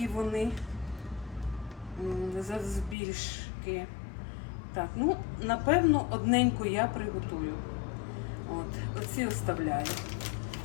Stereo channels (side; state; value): right; drops out; at 3.0 s